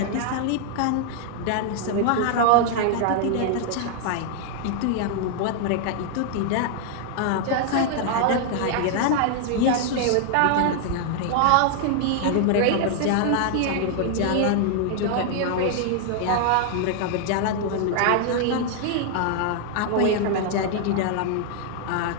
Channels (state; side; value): different; both; correlation 0.00